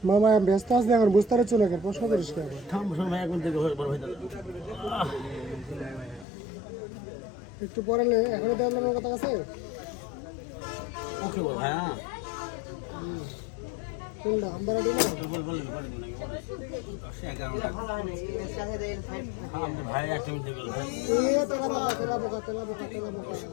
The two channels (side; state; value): right; drops out; at 6.2 s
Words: মামা ব্যস্ত আছে এখন, বুঝতে পারছো না, প্রশ্ন করিস কে? একটু পরে এখনই দেখলাম আমার কথা আছে। ওকে বল হ্যাঁ কোনটা আমবারাটি না? ভাই একটা মিনিট গেল এ তেলা বোকা তেলা বোকা তেলা বোকা তেলা বোকা।